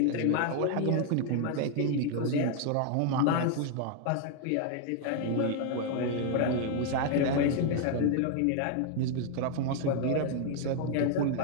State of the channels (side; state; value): both; different; correlation 0.00